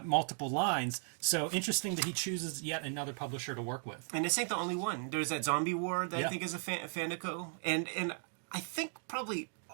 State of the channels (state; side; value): silent; left; 54 dB below the other